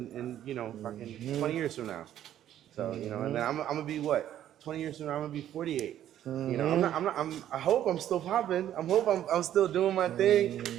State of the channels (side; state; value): left; quieter; 11.4 dB